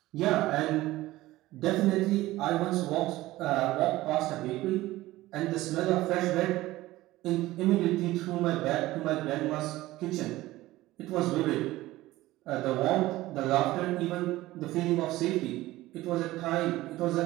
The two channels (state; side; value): quieter; left; 17.3 dB